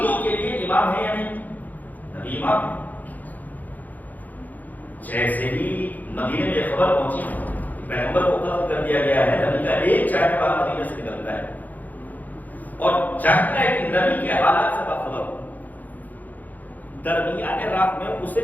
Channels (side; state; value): right; late; 0.082 ms